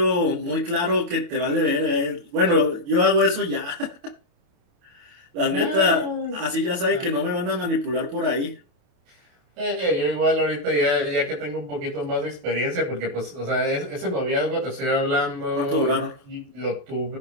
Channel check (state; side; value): late; left; 28 ms